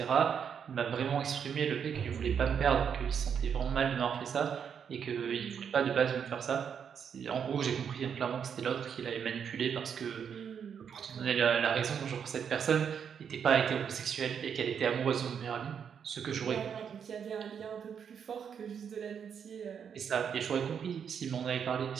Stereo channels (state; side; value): quieter; left; 7.5 dB